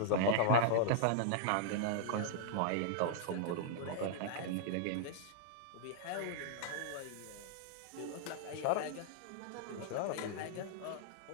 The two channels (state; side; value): different; both; correlation -0.01